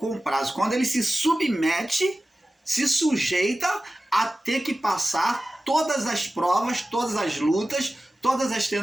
Quando ele se submete, se sujeita a ter que passar todas as provas, todas as lutas, todas as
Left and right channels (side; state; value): both; normal; correlation 0.95